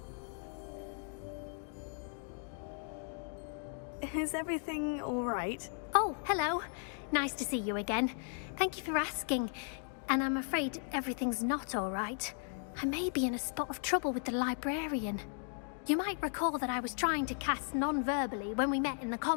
Is everything all right? Oh, hello. Nice to see you again. Thank you for asking. And I'm afraid everything's not all right. I may be in a spot of trouble with the librarian. You might recall that I was trying to cast non-verbally when we met in the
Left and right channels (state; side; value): silent; right; 54 dB below the other